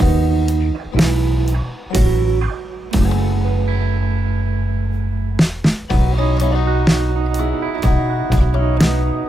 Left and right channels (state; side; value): normal; both; correlation 0.87